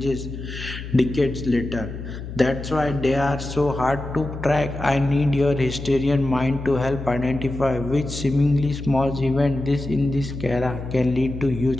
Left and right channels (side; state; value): left; noise; hum, 9 dB below the sound